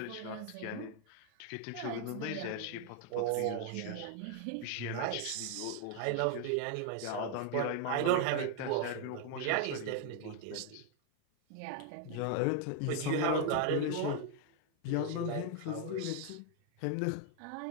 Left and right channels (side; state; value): both; different; correlation 0.00